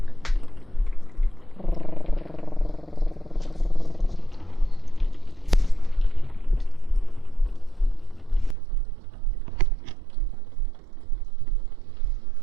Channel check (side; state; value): left; drops out; at 8.6 s